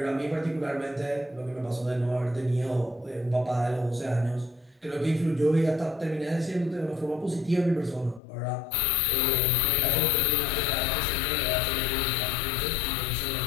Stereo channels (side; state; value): right; drops out; at 8.2 s